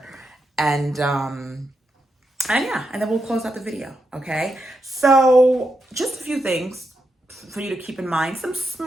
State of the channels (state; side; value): normal; both; correlation 0.84